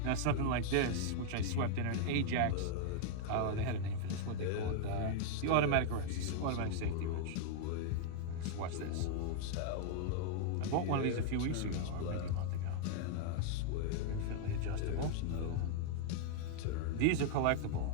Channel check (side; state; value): both; different; correlation -0.01